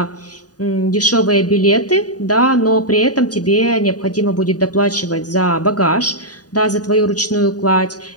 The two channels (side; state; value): right; late; 0.68 ms